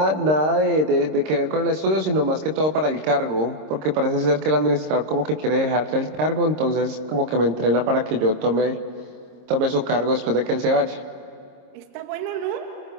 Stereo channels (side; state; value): left; late; 26 ms